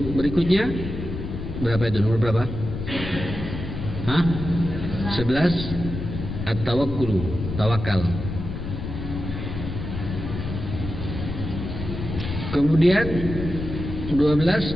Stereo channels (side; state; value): left; noise; rumble, 6 dB below the sound